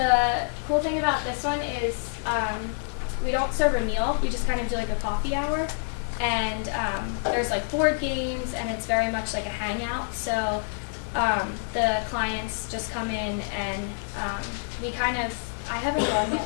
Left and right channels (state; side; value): silent; right; digital silence